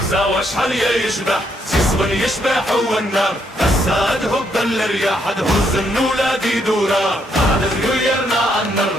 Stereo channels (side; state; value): both; normal; correlation 0.74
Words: وشحال يشبح سيصبر يشبح هو النار هسا هب الرياح تهز النولاد يدورا هذا يرنا عن